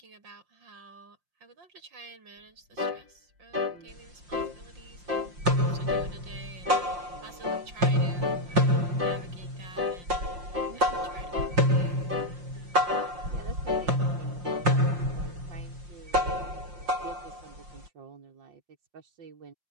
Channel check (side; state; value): left; late; 5.7 ms